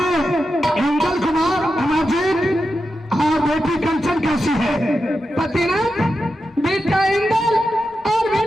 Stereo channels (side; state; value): both; normal; correlation 0.89